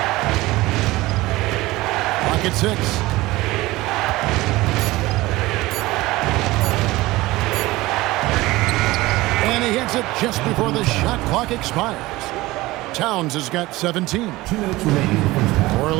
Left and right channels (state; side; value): quieter; left; 19.3 dB